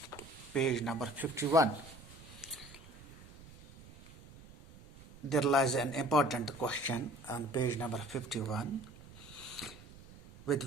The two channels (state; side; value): noise; right; rumble, 19 dB below the sound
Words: page number 51. There lies an important question on page number 51,